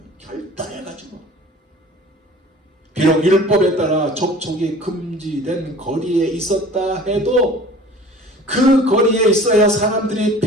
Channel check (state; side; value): normal; both; correlation 0.45